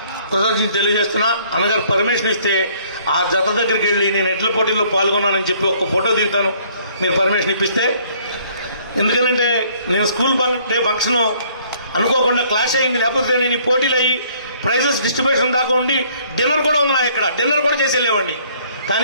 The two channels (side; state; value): both; inverted; correlation -0.60